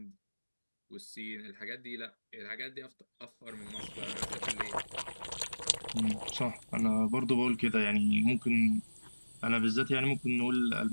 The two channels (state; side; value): inverted; both; correlation -1.00